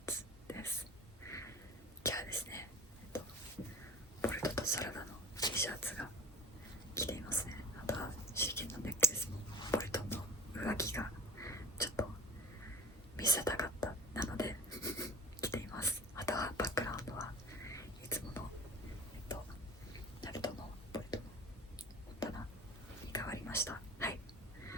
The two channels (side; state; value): both; normal; correlation 0.35